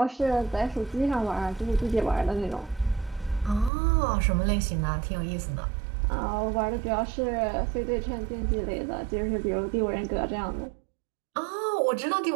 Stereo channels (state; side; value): drops out; left; at 3.7 s